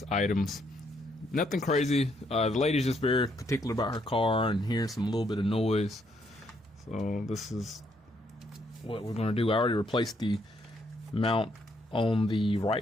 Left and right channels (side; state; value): both; normal; correlation 0.73